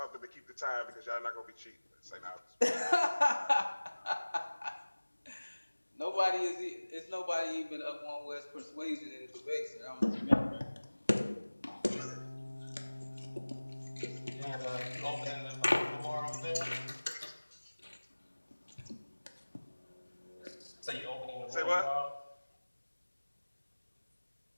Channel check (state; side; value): inverted; both; correlation -1.00